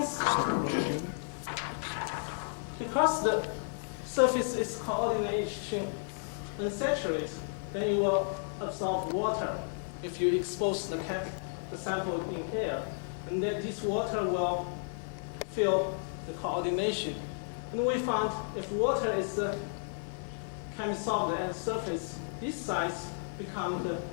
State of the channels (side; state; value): right; silent; 56 dB below the other